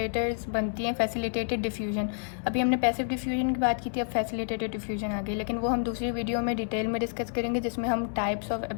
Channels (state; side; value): silent; right; digital silence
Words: बनती हैं, फैसिलिटेटेड डिफ्यूजन। अभी हमने पैसिव डिफ्यूजन की बात की थी, अब फैसिलिटेटेड डिफ्यूजन आ गई, लेकिन वो हम दूसरी वीडियो में डिटेल में डिस्कस करेंगे जिसमें हम टाइप्स ऑफ